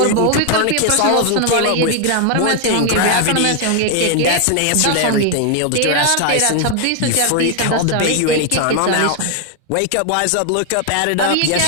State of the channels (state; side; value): different; both; correlation 0.00